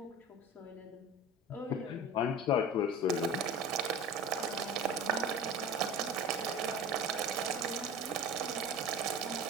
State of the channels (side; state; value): both; normal; correlation 0.34